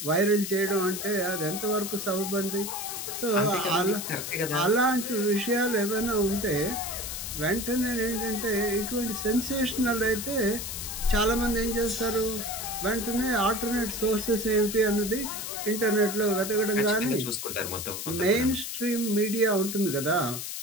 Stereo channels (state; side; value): noise; left; hiss, 6 dB below the sound